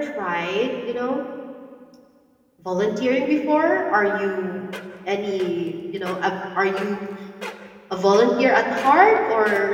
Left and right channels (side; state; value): both; identical; correlation 1.00